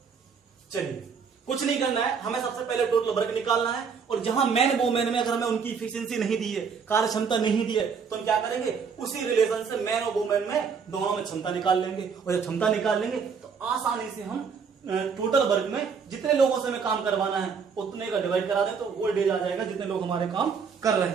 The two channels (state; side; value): quieter; left; 6.0 dB